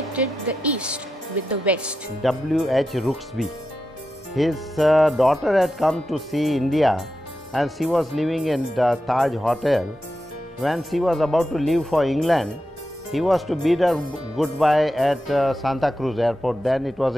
the east with the west. W.H. Rooksby. His daughter had come to see India and she was living in the Taj Hotel. When she was about to leave for England, he was to bid her goodbye at Santa Cruz airport. Then it was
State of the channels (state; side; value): normal; both; correlation 0.89